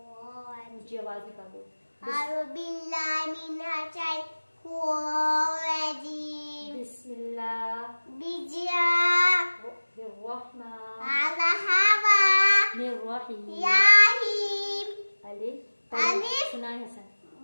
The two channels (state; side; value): inverted; both; correlation -1.00